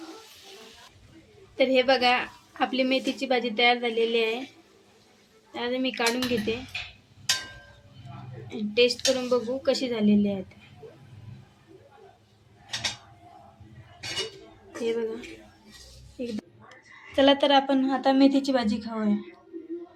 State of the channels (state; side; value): identical; both; correlation 1.00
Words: तर हे बघा, आपली मेथीची भाजी तयार झालेली आहे। आता मी काढून घेते, टेस्ट करून बघू कशी झालेली आहे। हे बघा, चला तर आपण आता मेथीची भाजी खाऊया।